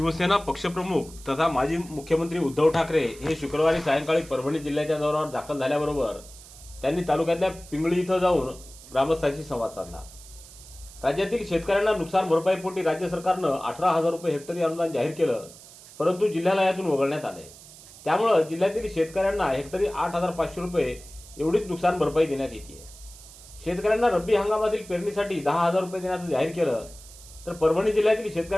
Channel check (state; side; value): noise; right; hiss, 19 dB below the sound